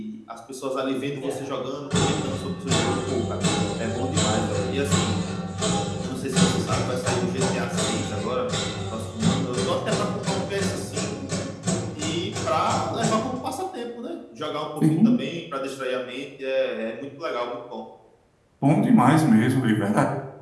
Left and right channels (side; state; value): both; identical; correlation 1.00